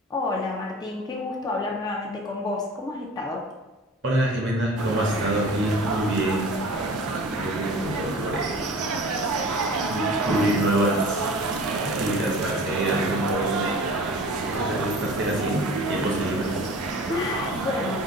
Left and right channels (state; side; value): normal; both; correlation 0.42